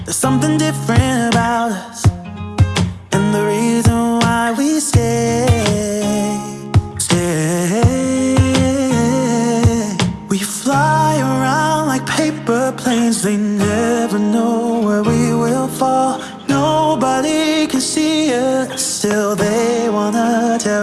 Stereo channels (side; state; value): both; identical; correlation 1.00